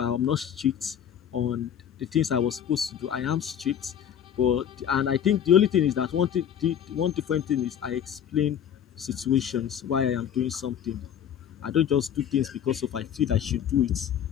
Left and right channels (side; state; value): right; quieter; 9.2 dB